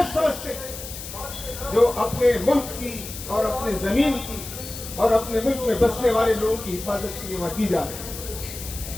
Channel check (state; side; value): noise; left; hiss, 11 dB below the sound